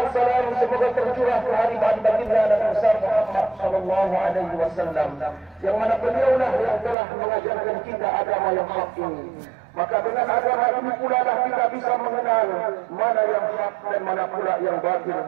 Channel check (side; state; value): left; drops out; at 7.0 s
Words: salam semoga tercurah ke hari baginda Nabi besar Muhammad sallallahu alaihi wasallam, yang mana beliaulah yang telah mengajarkan kita agama yang hak ini. Maka dengan agama ini pula lah kita bisa mengenal mana yang hak dan mana pula yang batil,